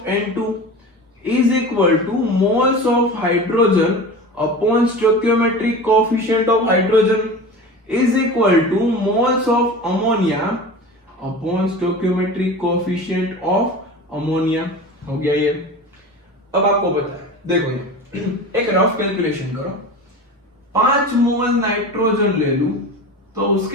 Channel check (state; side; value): normal; both; correlation 0.33